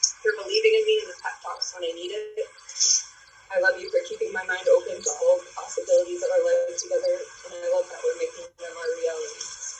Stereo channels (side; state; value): both; identical; correlation 1.00